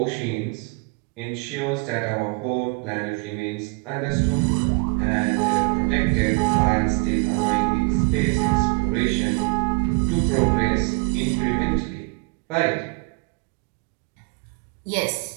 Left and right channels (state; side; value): quieter; left; 31.1 dB